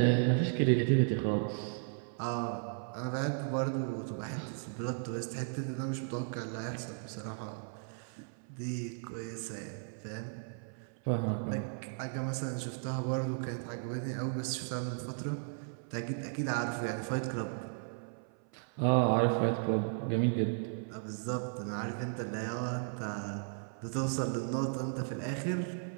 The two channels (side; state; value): left; silent; 54 dB below the other